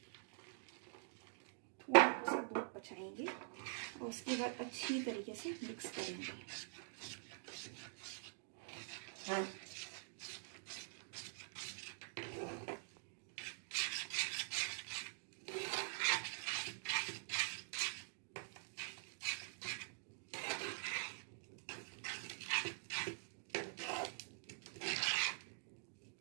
थोड़ा सा दूध बचाएंगे और उसके बाद अच्छी तरीके से मिक्स करेंगे।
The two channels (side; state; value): left; silent; digital silence